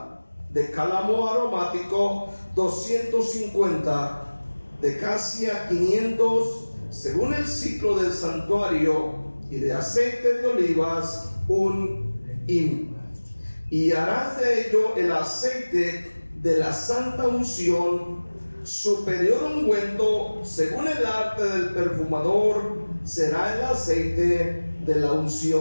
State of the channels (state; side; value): inverted; both; correlation -1.00